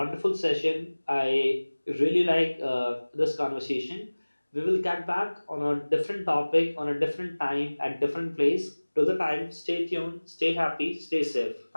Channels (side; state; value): both; inverted; correlation -1.00